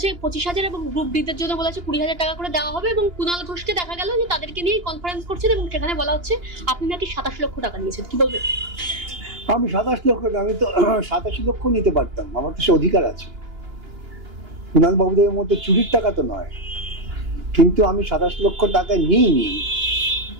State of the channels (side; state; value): left; late; 2.9 ms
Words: 25,000 এবং গ্রুপ ডি দের জন্য বলেছে 20,000 টাকা করে দেওয়া হবে, এবং কুণাল ঘোষকে দেখা গেল যে তাদেরকে নিয়ে কনফারেন্স করছেন এবং সেখানে বলা হচ্ছে আপনি নাকি 27 লক্ষ টাকা নিয়েছেন। কি বলবেন? আমি 27 লক্ষ, আমি তো 87 লক্ষ নিতে পারতাম, আমার তো সে অধিকার আছে। কুণাল বাবুদের মধ্যে চুরির টাকা তো নয়, কিন্তু আমি 27 লক্ষ টাকা নিইনি।